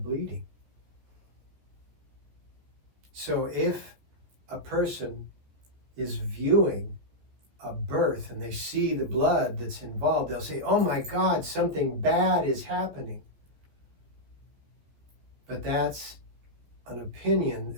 bleeding. So if a person is viewing a birth and they see the blood that's involved, they'll say, oh my God, something bad is happening. But that's an opinion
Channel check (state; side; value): late; left; 14 ms